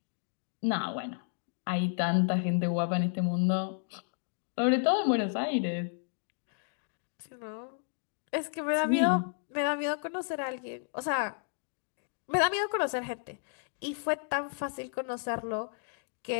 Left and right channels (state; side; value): silent; right; digital silence